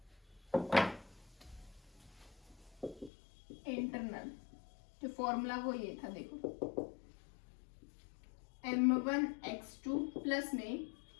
इंटरनल जो फॉर्मूला वो ये था, देखो m1 x2 प्लस में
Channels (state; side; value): drops out; right; at 3.1 s